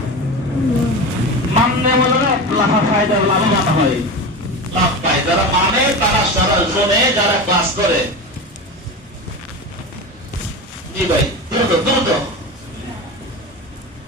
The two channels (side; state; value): both; normal; correlation 0.25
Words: মাননে বলে লাভা ফায়দা, লাভবান হয়, লাভ পায় যারা মানে, তারা সারা জোনে যারা ক্লাস করে। জি ভাই দ্রুত দ্রুত